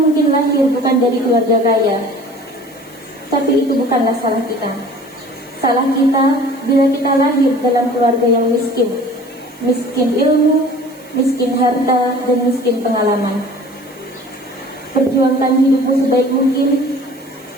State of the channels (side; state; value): right; noise; hiss, 25 dB below the sound